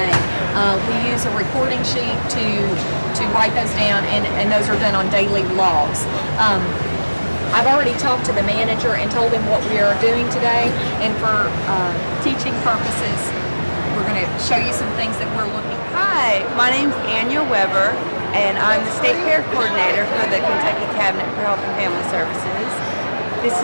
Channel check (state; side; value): inverted; both; correlation -1.00